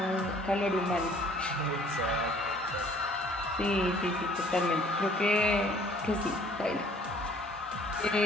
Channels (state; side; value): normal; both; correlation 0.56